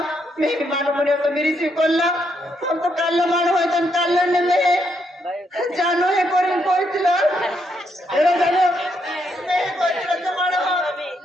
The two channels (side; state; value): both; normal; correlation 0.77